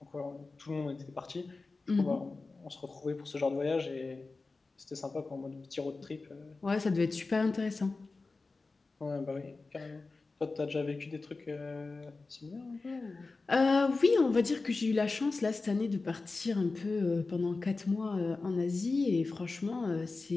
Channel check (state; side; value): quieter; right; 3.7 dB